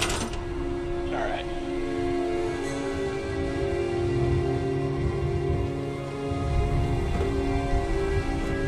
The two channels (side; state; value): both; identical; correlation 1.00